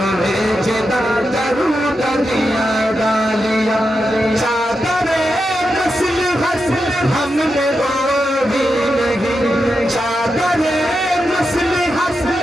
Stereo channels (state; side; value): normal; both; correlation 0.87